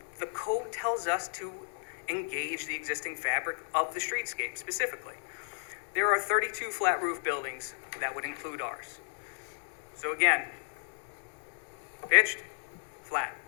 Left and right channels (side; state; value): right; silent; 55 dB below the other